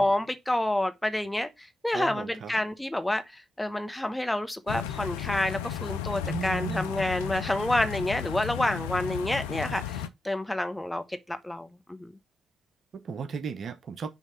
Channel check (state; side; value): normal; both; correlation 0.89